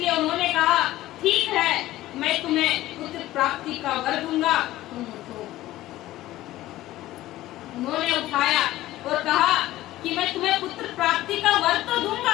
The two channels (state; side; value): quieter; right; 15.7 dB